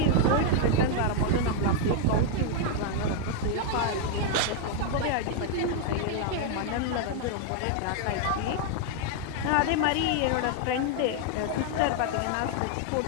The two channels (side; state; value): both; different; correlation 0.00